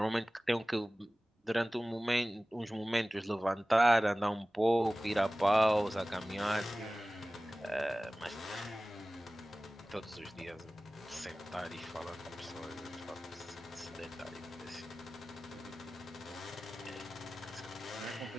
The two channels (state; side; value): normal; both; correlation 0.97